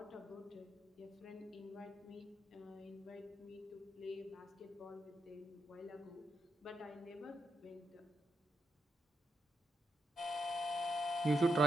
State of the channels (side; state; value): both; normal; correlation 0.83